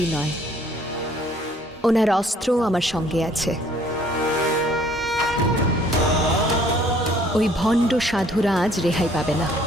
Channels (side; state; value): both; normal; correlation 0.59